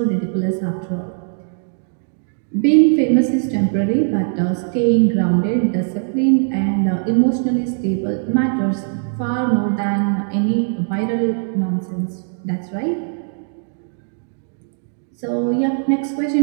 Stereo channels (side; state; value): left; silent; digital silence